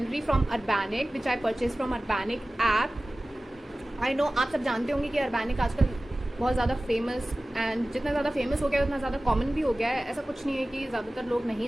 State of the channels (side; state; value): both; normal; correlation 0.97